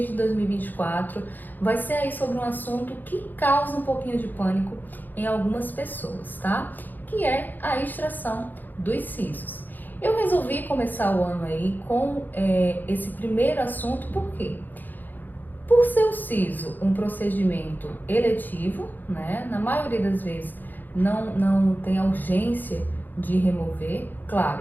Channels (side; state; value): right; late; 0.087 ms